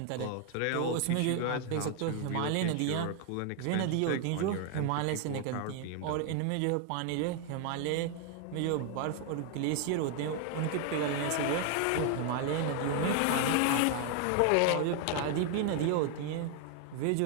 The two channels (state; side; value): different; both; correlation 0.00